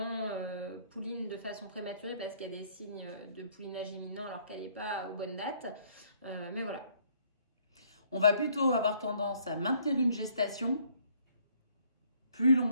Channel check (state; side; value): inverted; both; correlation -0.64